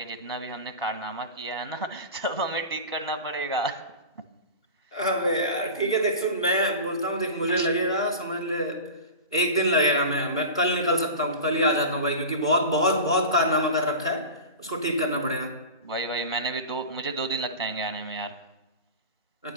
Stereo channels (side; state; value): both; inverted; correlation -0.30